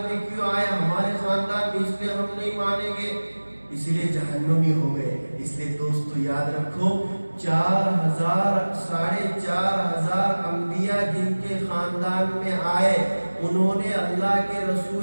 میں کیوں آئے، ہمارے خاندان میں اس لیے ہم نہیں مانیں گے، اس لیے جہنمی ہو گئے. اس لیے دوستو یاد رکھو 4,000 انبیاء جن کے خاندان میں آئے، انہوں نے اللہ کے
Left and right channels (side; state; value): both; inverted; correlation -1.00